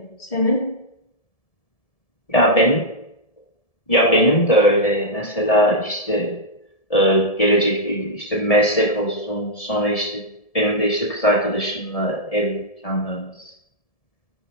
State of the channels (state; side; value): late; right; 1.7 ms